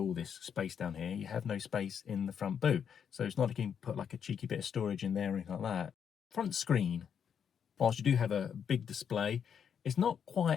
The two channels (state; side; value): quieter; right; 7.7 dB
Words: this space down here, you have no space in the front boot. So it's not like you can put like a cheeky bit of storage in there or anything like that. Front screen. Whilst you do have a big display, it's not